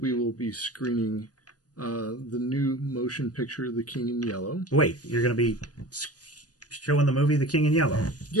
will be screening the new motion picture, The King in Yellow. Wait, you're going to be showing the movie The King in Yellow?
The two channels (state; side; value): late; right; 0.68 ms